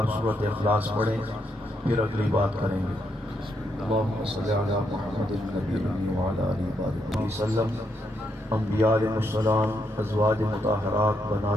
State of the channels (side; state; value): both; normal; correlation 0.78